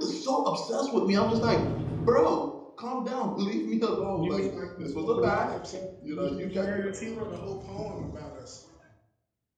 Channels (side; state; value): both; identical; correlation 1.00